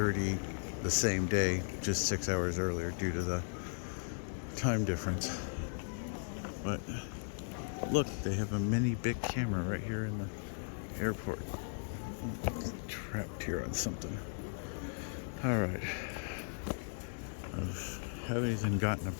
the same day, just 6 hours earlier due to the time difference. But look, they have a mini big camera right here in the airport. Trapped here on something. All right. I haven't even gotten a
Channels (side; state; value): right; silent; digital silence